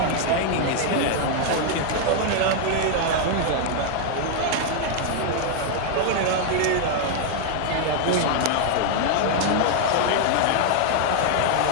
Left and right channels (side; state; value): both; different; correlation 0.00